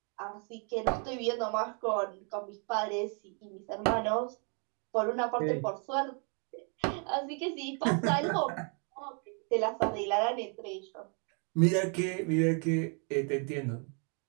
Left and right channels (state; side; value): quieter; left; 39.0 dB